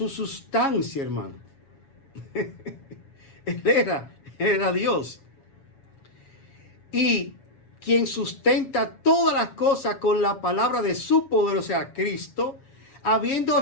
sustancia, hermano. Él era Dios. Y quien sustenta todas las cosas con la palabra de su poder, o sea, Cristo, habiendo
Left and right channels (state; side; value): late; right; 7.3 ms